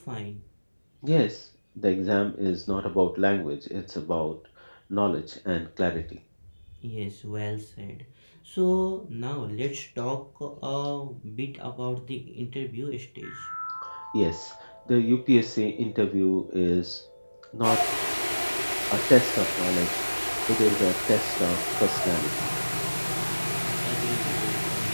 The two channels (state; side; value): inverted; both; correlation -1.00